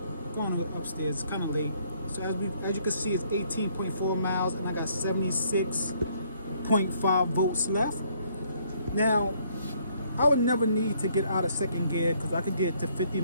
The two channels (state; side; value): inverted; both; correlation -0.67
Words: Going upstairs, it's kind of late. So as you can see, it's 18.4 miles, and I got 76.5 volts left. Now, I would never need to get out of second gear because I could get to 50